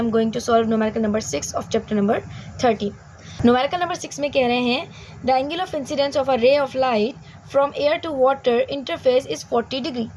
going to solve numerical number 6 of chapter number 13. Numerical number 6 में कह रहे हैं the angle of incidence of a ray of light from air to water interface is 40 degree.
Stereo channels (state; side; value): identical; both; correlation 1.00